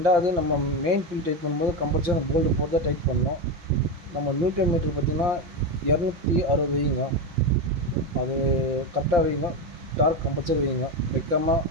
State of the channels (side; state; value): left; late; 5.7 ms